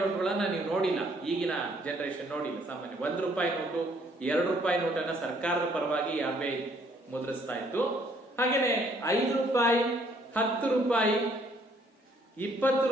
ನೋಟುಗಳನ್ನ ನೀವು ನೋಡಿಲ್ಲ, ಈಗಿನ ಜನರೇಷನ್ ನೋಡಿಲ್ಲ. ಸಾಮಾನ್ಯ 1 ರೂಪಾಯಿ ನೋಟು, 2 ರೂಪಾಯಿ ನೋಟನ್ನ ಸರ್ಕಾರದ ಪರವಾಗಿ RBI ಮುದ್ರಿಸ್ತಾ ಇತ್ತು. ಹಾಗೇನೆ 5 ರೂಪಾಯಿ, 10 ರೂಪಾಯಿ, 20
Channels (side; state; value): both; normal; correlation 0.65